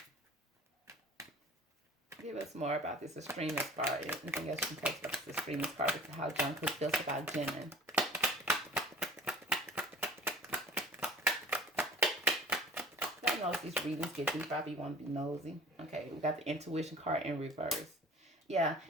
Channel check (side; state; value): both; normal; correlation 0.44